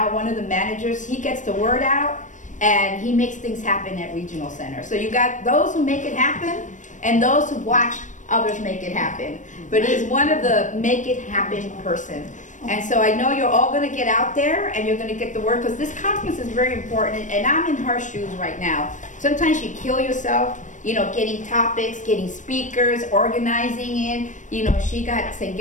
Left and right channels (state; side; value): late; right; 0.37 ms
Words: one of the managers. He gets the word out, and he makes things happen at Regional Center. So you got those who make it happen, and those who watch others make it happen. But he's one of the make it happen person. And so I know you're all going to get out there, and you're going to get the word, because this conference is very important, and I'm in her shoes right now. Sometimes you kill yourself, getting topics, getting speakers, organizing it. She got St.